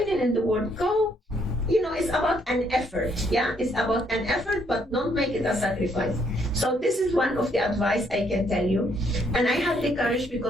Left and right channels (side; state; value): both; normal; correlation 0.70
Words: in the world. Go, it's about an effort. Yeah, it's about an effort, but don't make it a sacrifice. So this is one of the advice I can tell you. And I had the courage